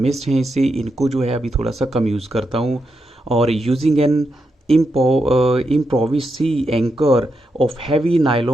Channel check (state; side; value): normal; both; correlation 0.84